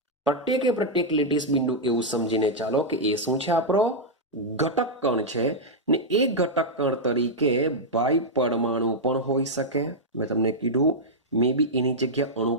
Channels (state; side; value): normal; both; correlation -0.05